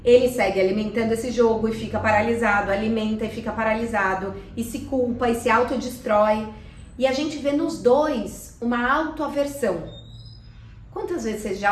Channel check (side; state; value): both; identical; correlation 1.00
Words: Ele segue alimentando esse jogo e fica paralisado, alimenta e fica paralisado, e se culpa e se autodestrói. E a gente vê nos dois uma autoaversão. Quantas vezes você